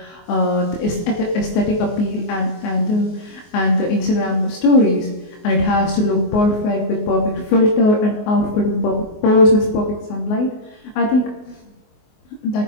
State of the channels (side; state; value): right; late; 24 ms